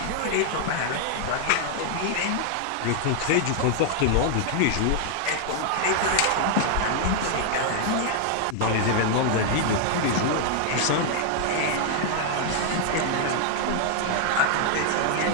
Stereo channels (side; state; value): both; different; correlation 0.00